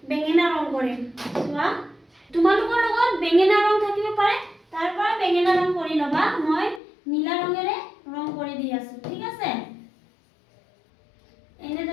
বেঙেনা ৰং কৰিম। চোৱা, তোমালোকৰ লগত বেঙেনা ৰং থাকিব পাৰে, তাৰ পৰা বেঙেনা ৰং কৰি ল'বা। মই নীলা ৰঙেৰে ৰং কৰি দি আছোঁ, ঠিক আছে?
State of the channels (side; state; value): right; drops out; at 6.8 s